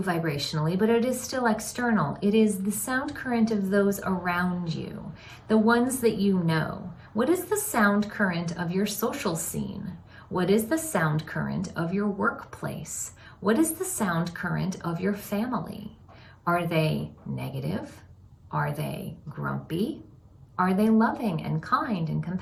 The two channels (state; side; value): identical; both; correlation 1.00